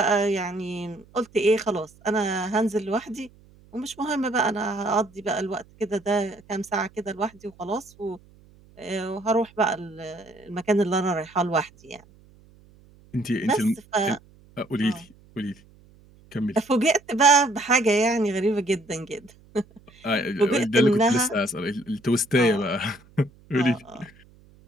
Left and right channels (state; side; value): noise; right; hum, 27 dB below the sound